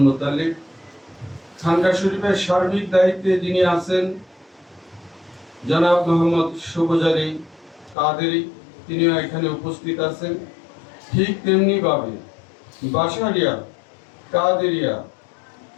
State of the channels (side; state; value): right; drops out; at 8.0 s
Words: মুতালিব। খানকা শরীফের সার্বিক দায়িত্বে যিনি আছেন জনাব মোহাম্মদ সুবজারি কাদেরি, তিনিও এখানে উপস্থিত আছেন। ঠিক তেমনি ভাবে বাসারিয়া কাদেরিয়া